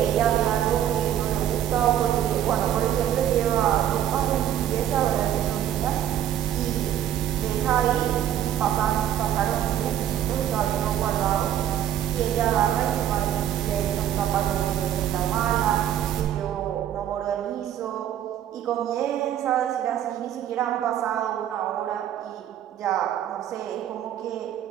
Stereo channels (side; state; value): left; quieter; 10.6 dB